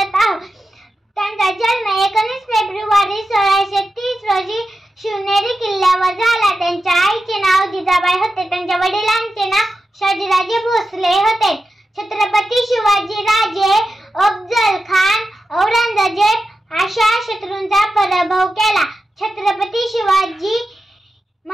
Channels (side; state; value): both; normal; correlation 0.91